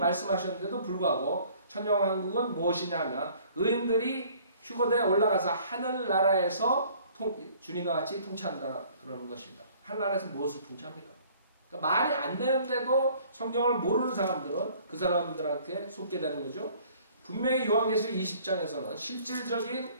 불구하고 천녀왕국은 무엇이냐면 의인들이 휴거대에 올라가서 하늘나라에서 주님과 같이 통치한다 그러는 것입니다. 하늘나라에서 무엇을 통치합니까? 그러니까 말이 안 되는데도 성경을 모르는 사람들은 그 사람들한테 속게 되는 거죠. 분명히 요한계시록 20장에서는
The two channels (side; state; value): both; inverted; correlation -0.55